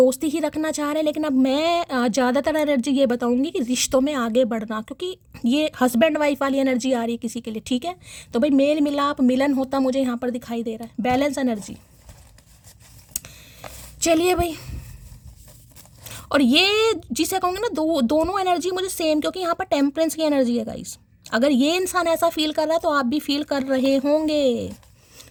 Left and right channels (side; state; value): both; identical; correlation 1.00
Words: ही रखना चाह रहे हैं, लेकिन अब मैं ज़्यादातर एनर्जी ये बताऊंगी कि रिश्तों में आगे बढ़ना, क्योंकि ये हस्बैंड वाइफ वाली एनर्जी आ रही है किसी के लिए, ठीक है। तो भाई मेल मिलाप मिलन होता मुझे यहाँ पर दिखाई दे रहा है, बैलेंस एनर्जी। चलिए भाई, और ये जिसे कहूँगे ना, दोनों एनर्जी मुझे सेम, क्योंकि यहाँ पर टेम्परेंस की एनर्जी है गाइस। अगर ये इंसान ऐसा फील कर रहा है तो आप भी फील कर रहे होंगे।